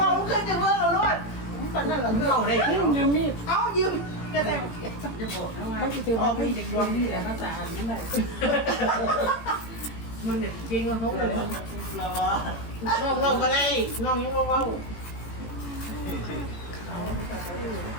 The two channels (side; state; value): right; late; 18 ms